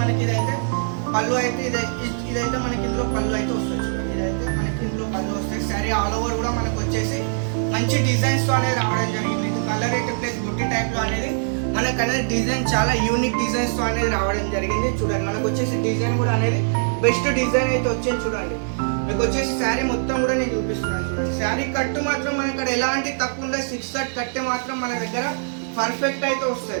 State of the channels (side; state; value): left; silent; digital silence